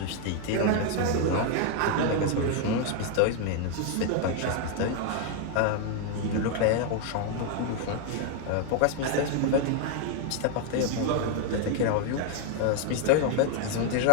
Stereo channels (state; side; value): different; both; correlation 0.00